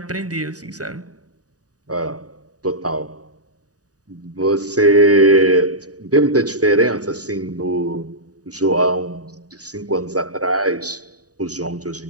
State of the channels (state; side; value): late; left; 0.67 ms